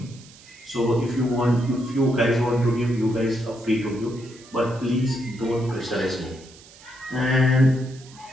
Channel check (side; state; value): right; noise; hiss, 22 dB below the sound